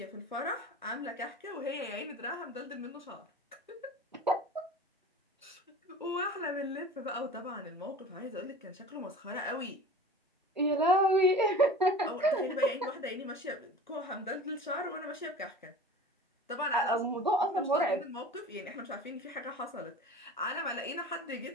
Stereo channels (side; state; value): both; normal; correlation 0.38